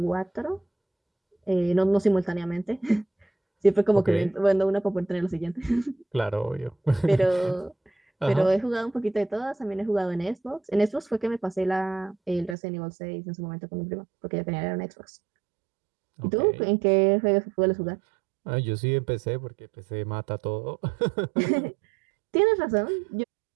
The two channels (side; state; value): left; drops out; at 12.6 s